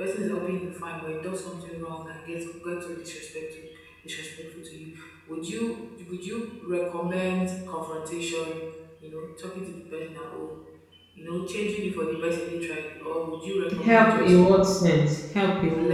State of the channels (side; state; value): both; identical; correlation 1.00